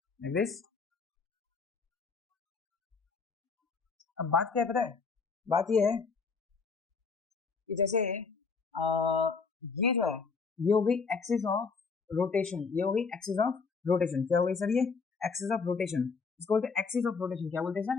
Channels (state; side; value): quieter; right; 4.9 dB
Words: like this। अब बात क्या है पता है, बात ये है कि जैसे ये जो है ये हो गई एक्सिस ऑफ रोटेशन, ये हो गई एक्सिस ऑफ रोटेशन। क्या हो गई सर, ये एक्सिस ऑफ रोटेशन, इसको बोलते हैं एक्सिस ऑफ रोटेशन। क्या बोलते हैं सर,